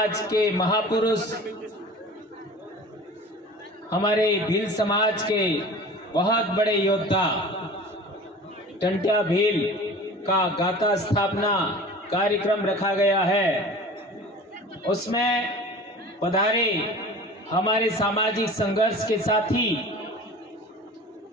के महापुरुष, हमारे भील समाज के बहुत बड़े योद्धा टंट्या भील का गाथा स्थापना कार्यक्रम रखा गया है। उसमें पधारे हमारे सामाजिक संघर्ष के साथी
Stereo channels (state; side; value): normal; both; correlation 0.40